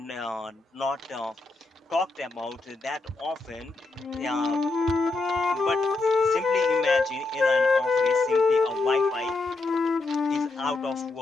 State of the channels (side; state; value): right; quieter; 3.4 dB